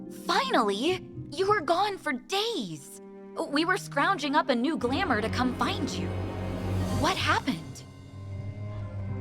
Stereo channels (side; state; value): both; identical; correlation 1.00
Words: Finally! You were gone for days! We were scrounging up a new glamour to come find you. What happened?